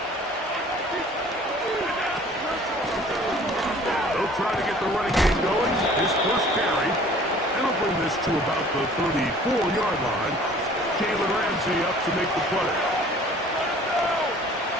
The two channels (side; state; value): both; normal; correlation 0.50